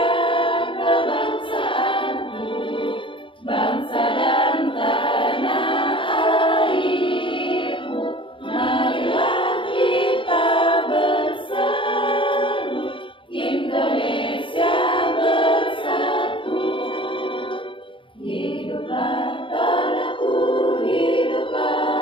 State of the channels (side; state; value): right; late; 0.25 ms